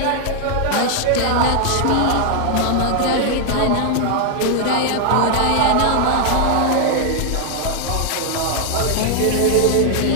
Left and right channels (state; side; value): different; both; correlation 0.00